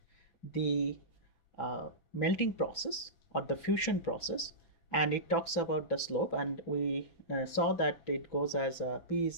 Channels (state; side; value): late; right; 5.9 ms